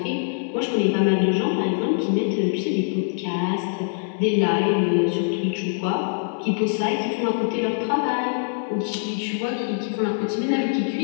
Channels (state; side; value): silent; right; 61 dB below the other